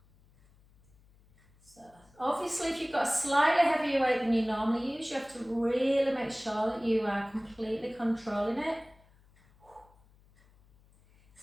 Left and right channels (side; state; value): left; noise; hum, 30 dB below the sound